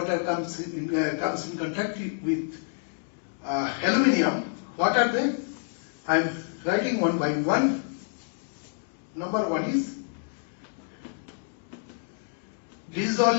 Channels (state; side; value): silent; right; digital silence